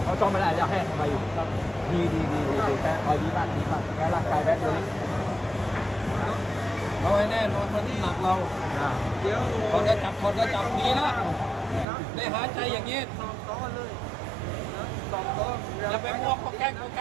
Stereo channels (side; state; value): left; drops out; at 11.9 s